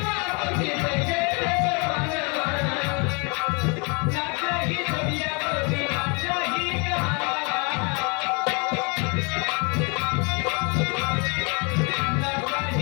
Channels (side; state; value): right; quieter; 33.1 dB